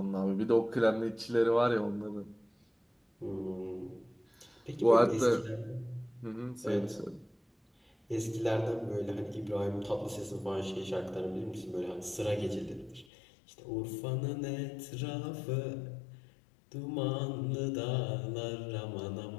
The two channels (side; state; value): right; drops out; at 13.1 s